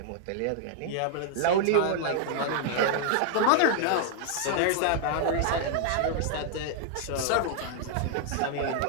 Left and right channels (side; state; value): both; different; correlation 0.00